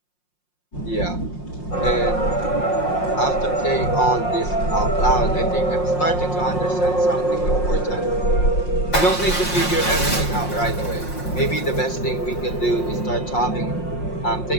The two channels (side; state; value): right; late; 5.6 ms